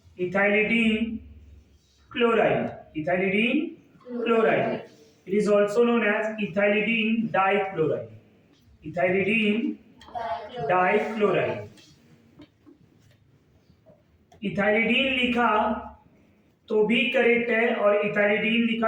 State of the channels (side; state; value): both; identical; correlation 1.00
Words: chloride. It is also known as ethylidene dichloride. Ethylidene लिखा तो भी करेक्ट है और इथाइलिडीन